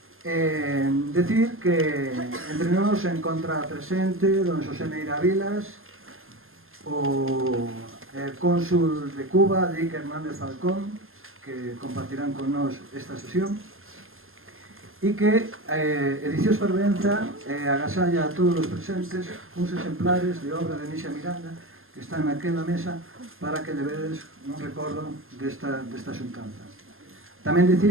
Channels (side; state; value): left; late; 0.60 ms